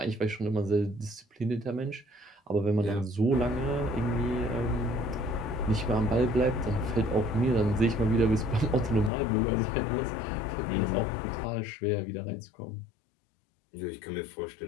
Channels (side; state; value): right; drops out; at 9.1 s